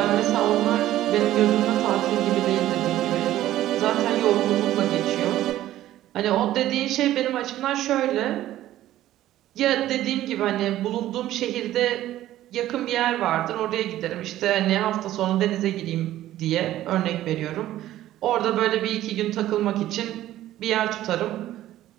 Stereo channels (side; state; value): left; quieter; 13.9 dB